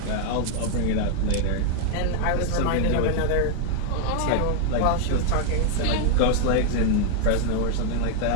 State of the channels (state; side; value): different; both; correlation 0.00